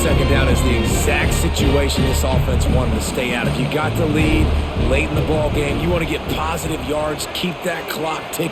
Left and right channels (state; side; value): identical; both; correlation 1.00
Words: down is the exact situation this offense wanted to stay out of. You got the lead late in the ball game. You want to get positive yards, keep that clock